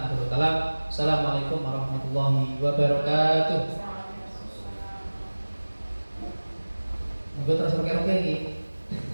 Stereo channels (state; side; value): inverted; both; correlation -1.00